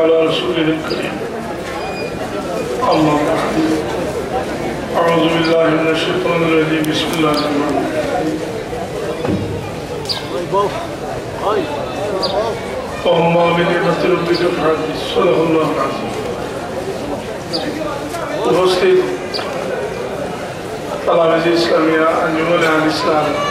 رسوله الكريم أما بعد أعوذ بالله من الشيطان الرجيم بسم الله الرحمن الرحيم وأما بنعمة ربك فحدث صدق الله العظيم উপস্থিত তালামিজ ইসলামিয়া আঞ্জুমানে আল ইসলাম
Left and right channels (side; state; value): both; identical; correlation 1.00